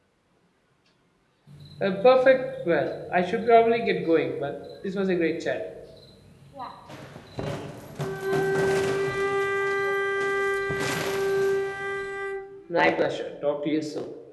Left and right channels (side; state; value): both; identical; correlation 1.00